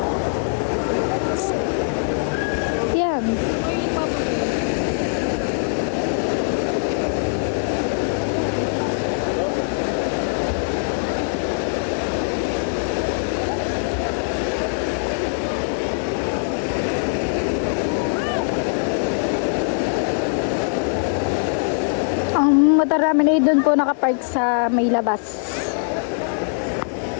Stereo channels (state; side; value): silent; right; digital silence